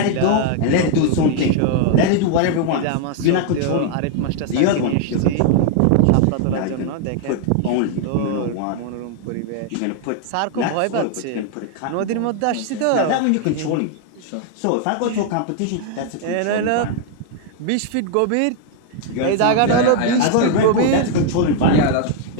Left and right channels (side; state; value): both; different; correlation 0.00